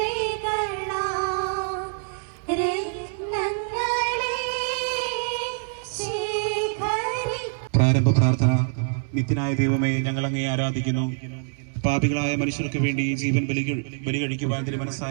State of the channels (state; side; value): silent; left; digital silence